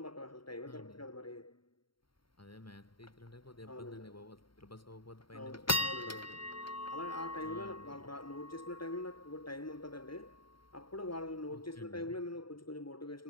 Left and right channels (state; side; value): late; right; 0.73 ms